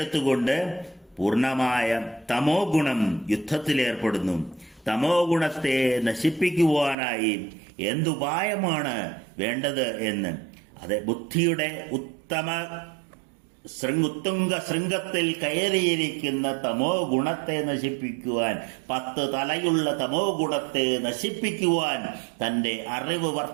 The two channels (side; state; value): left; drops out; at 7.0 s